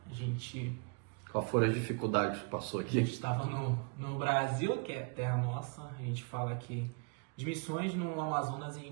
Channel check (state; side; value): quieter; left; 34.6 dB